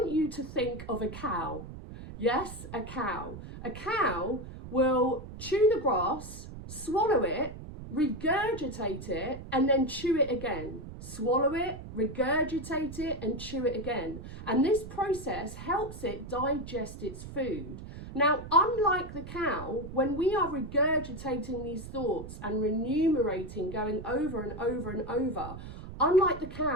you to think of a cow. Yes, a cow. A cow will chew the grass, swallow it, regurgitate it, and then chew it again. Swallow it, regurgitate it, and chew it again. And this process helps it digest its food. Now, unlike the cow, when we are regurgitating these thoughts and remunerating, going over and over and over, unlike the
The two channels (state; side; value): noise; right; rumble, 12 dB below the sound